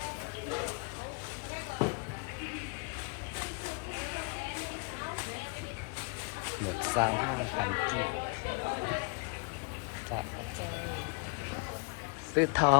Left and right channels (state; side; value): quieter; right; 33.5 dB